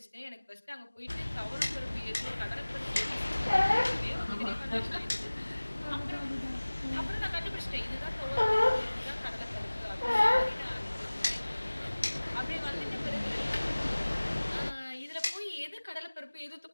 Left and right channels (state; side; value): inverted; both; correlation -1.00